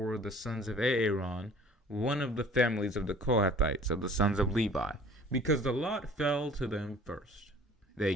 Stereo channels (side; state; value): both; normal; correlation 0.50